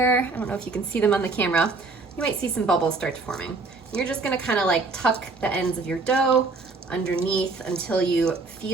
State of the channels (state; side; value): quieter; left; 3.8 dB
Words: I don't know if you can see them on the camera. You might see some bubbles start forming. And you're just gonna kind of like tuck the ends of your dough underneath until you